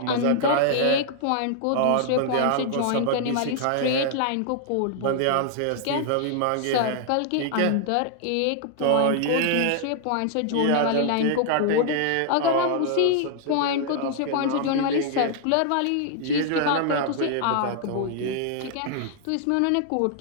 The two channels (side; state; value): both; different; correlation 0.00